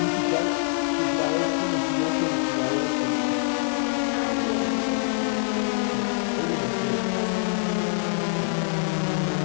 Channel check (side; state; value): right; silent; 61 dB below the other